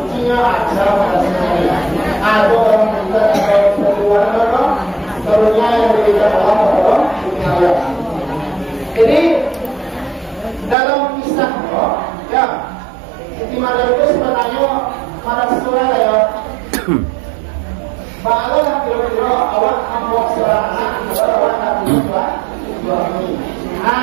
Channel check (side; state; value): left; drops out; at 10.8 s